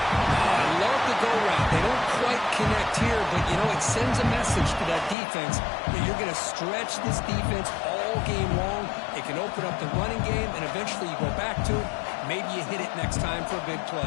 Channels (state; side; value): drops out; right; at 5.2 s